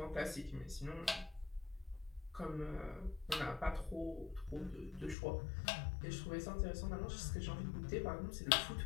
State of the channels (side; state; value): right; drops out; at 5.2 s